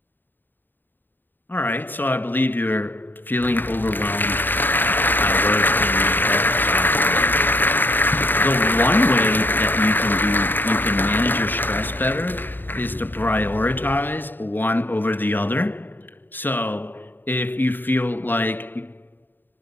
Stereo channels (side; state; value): right; late; 0.092 ms